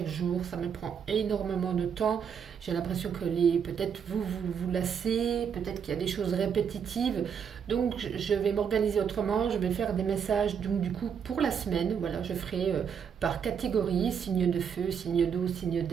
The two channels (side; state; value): left; quieter; 7.3 dB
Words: jour. Ça me prend énormément de temps. J'ai l'impression que peut-être vous lassez, peut-être qu'il y a des choses répétitives. Donc, je vais m'organiser autrement. Je vais faire des messages, donc du coup, pour la semaine. Voilà, je ferai par catégorie, signe de feu, signe d'eau, signe